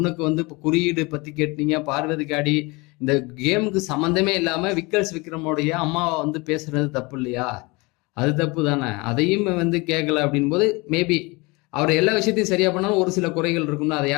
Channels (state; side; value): quieter; right; 25.5 dB